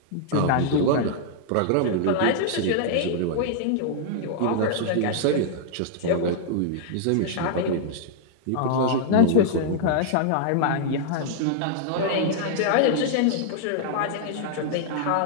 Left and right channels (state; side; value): different; both; correlation -0.01